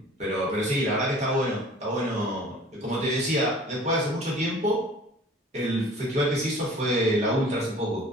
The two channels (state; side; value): normal; both; correlation 0.47